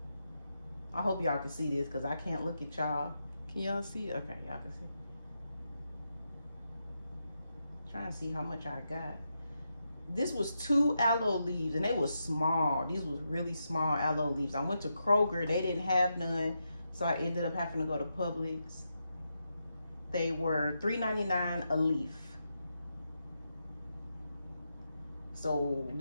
I hope y'all can see this because I can't look at y'all. Can y'all see? Okay, y'all can see. Trying to see how much I got. This was 2 aloe leaves and they was small. These was really small aloe leaves. I went to Kroger, they didn't have none, so I ended up having to go to Publix. They were $3.99 a leaf. So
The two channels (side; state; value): both; inverted; correlation -0.85